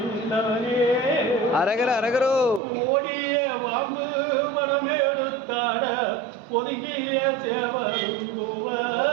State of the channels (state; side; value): drops out; left; at 2.6 s